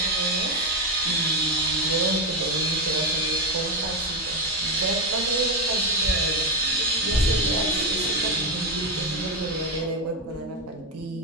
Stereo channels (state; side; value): normal; both; correlation 0.09